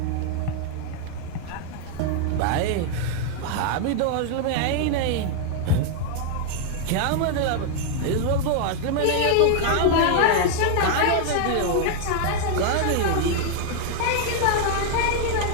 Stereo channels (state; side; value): different; both; correlation 0.00